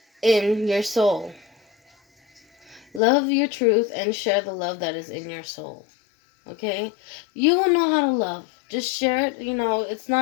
in your soul. Love your truth and share the love that is in your soul. Okay? You will know how to love. Just share it. It's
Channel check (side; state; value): right; drops out; at 3.0 s